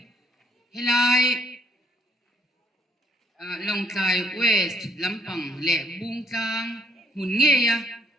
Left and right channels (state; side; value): normal; both; correlation 0.66